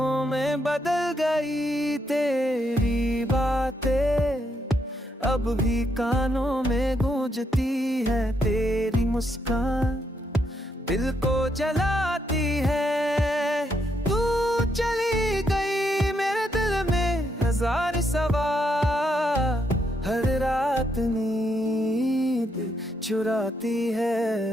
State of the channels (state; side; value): normal; both; correlation 0.77